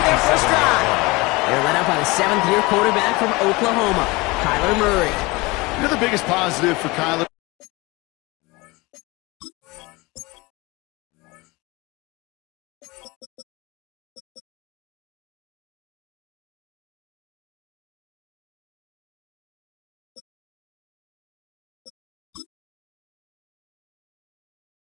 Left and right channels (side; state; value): right; quieter; 23.4 dB